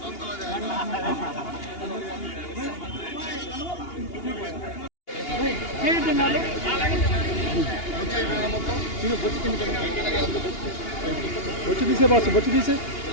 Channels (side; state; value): right; late; 2.8 ms